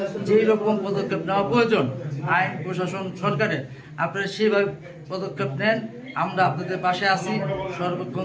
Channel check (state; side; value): identical; both; correlation 1.00